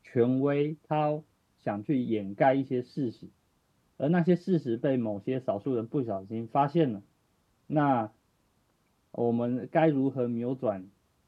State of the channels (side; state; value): both; identical; correlation 1.00